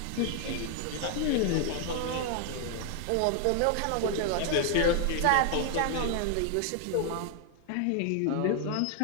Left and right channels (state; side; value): different; both; correlation 0.00